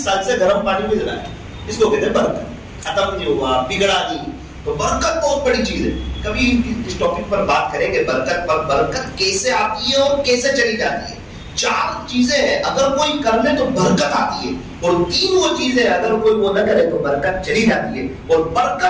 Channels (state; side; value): identical; both; correlation 1.00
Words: سال سے گرم پانی میں جلا ہے. اس کو کہتے ہیں برکت. ختم نہیں ہوا, بگڑا نہیں. تو برکت بہت بڑی چیز ہے. کبھی اس ٹاپک پر بات کریں گے برکت پر. برکت کیسے آتی ہے اور کیسے چلی جاتی ہے. 4 چیزیں ہیں اگر کوئی کر لے تو برکت آتی ہے, اور 3 وہ چیزیں اگر کوئی وہ نہ کرے تو برکت چلی جاتی ہے. اور